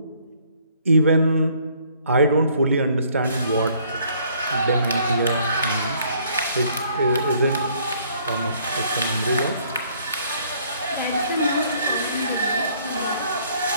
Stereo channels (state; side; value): inverted; both; correlation -0.63